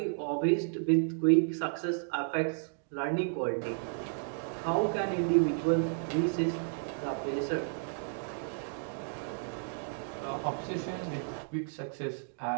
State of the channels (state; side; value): silent; left; digital silence